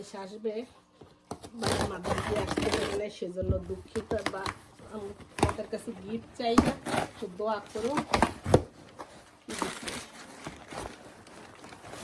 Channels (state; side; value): identical; both; correlation 1.00